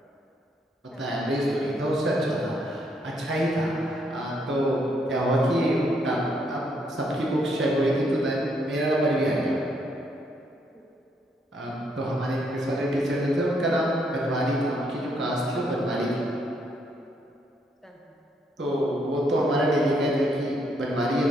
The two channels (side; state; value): both; normal; correlation 0.73